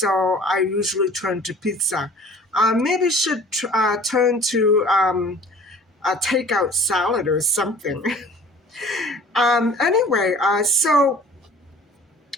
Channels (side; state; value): both; normal; correlation 0.47